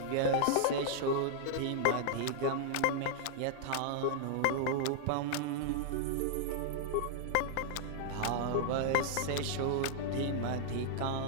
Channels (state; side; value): different; both; correlation -0.01